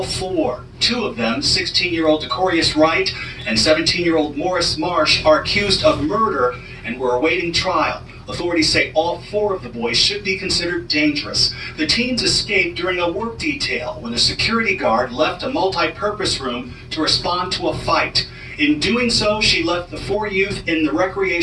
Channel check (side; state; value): both; identical; correlation 1.00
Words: 4. 2 of them, 16-year-old Decorius Wright and 17-year-old Morris Marsh, are accused of murder and were awaiting trial. Authorities say all 4 of the boys should be considered dangerous. The teens escaped during a work detail when a security guard left a multi-purpose room to respond to a fight. In doing so, she left the 4 youth in the